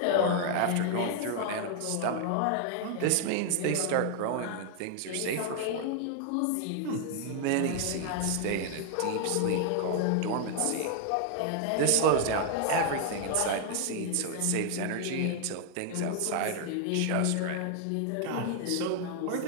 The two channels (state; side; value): different; both; correlation 0.00